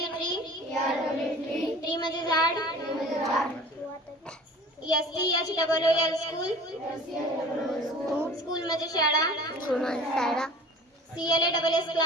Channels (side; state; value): both; normal; correlation 0.44